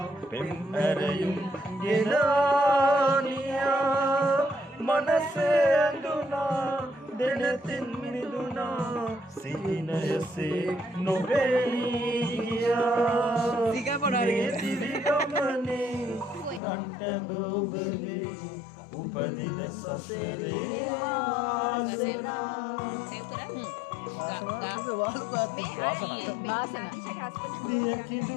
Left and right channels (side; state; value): right; drops out; at 16.6 s